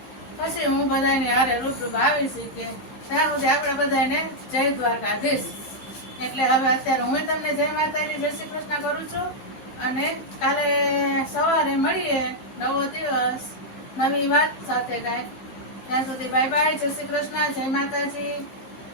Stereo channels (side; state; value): right; late; 15 ms